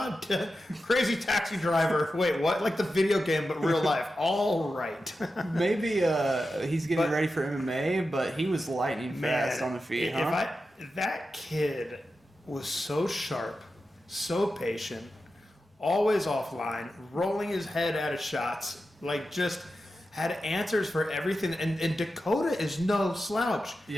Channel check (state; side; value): normal; both; correlation 0.91